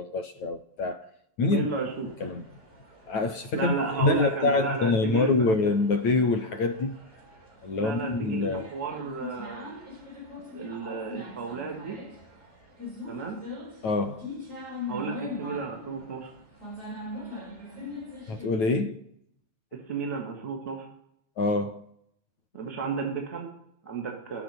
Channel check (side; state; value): right; late; 9.2 ms